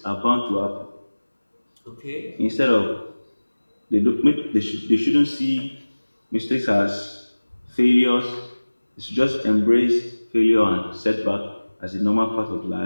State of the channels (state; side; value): inverted; both; correlation -1.00